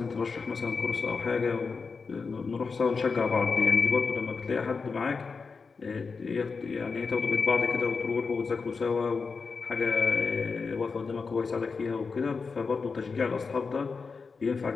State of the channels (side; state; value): right; quieter; 4.9 dB